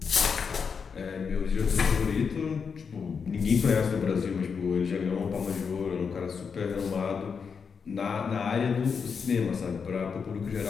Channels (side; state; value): right; quieter; 6.0 dB